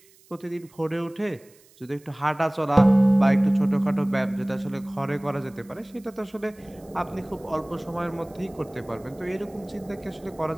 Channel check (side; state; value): right; noise; hiss, 28 dB below the sound